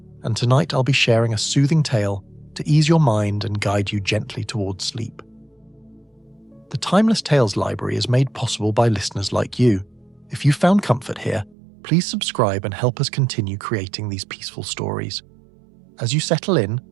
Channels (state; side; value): drops out; left; at 11.6 s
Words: and tonight I'll be sharing a soothing tale to ease your mind and guide you gently towards sleep. The Timeless Tales Library is made possible by listeners like you. If you found comfort here, please subscribe and help us continue creating these peaceful stories. As you settle in,